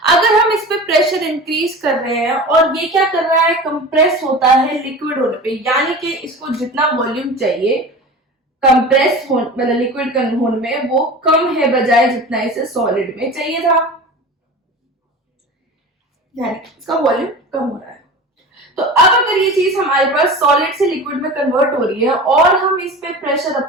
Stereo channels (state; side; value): normal; both; correlation 0.34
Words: अगर हम इस पे प्रेशर इंक्रीज कर रहे हैं और ये क्या कर रहा है, कंप्रेस होता है लिक्विड होने पे, यानी कि इसको जितना वॉल्यूम चाहिए कंप्रेस हो मतलब लिक्विड होने में वो कम है बजाय जितना इसे सॉलिड में चाहिए था, यानी इसका वॉल्यूम कम हो रहा है। तो अब अगर ये चीज हमारे पास सॉलिड से लिक्विड में कन्वर्ट हो रही है और हम इस पे प्रेशर